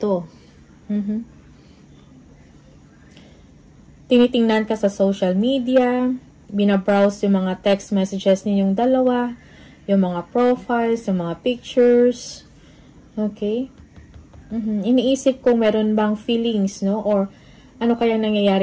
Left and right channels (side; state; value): both; identical; correlation 1.00